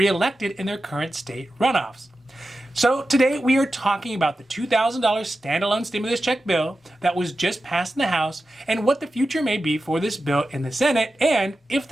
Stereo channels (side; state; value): both; normal; correlation 0.92